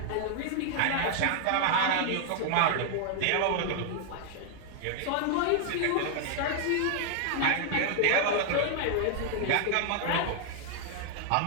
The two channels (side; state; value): both; different; correlation 0.00